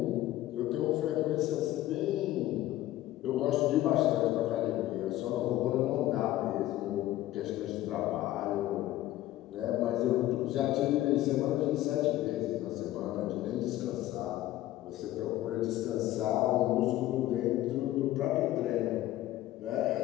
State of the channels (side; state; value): right; quieter; 15.0 dB